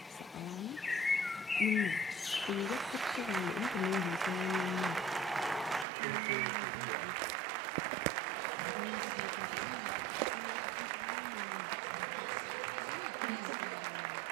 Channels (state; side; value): drops out; left; at 5.9 s